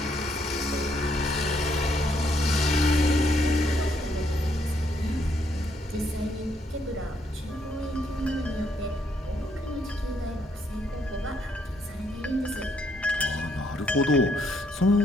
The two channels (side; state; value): both; normal; correlation 0.73